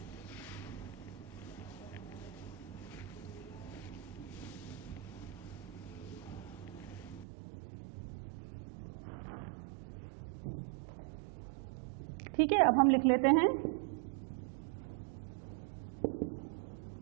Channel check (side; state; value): left; drops out; at 7.2 s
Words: ठीक है, अब हम लिख लेते हैं